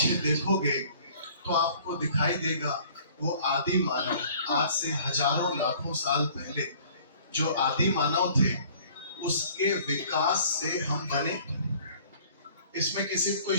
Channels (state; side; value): inverted; both; correlation -0.53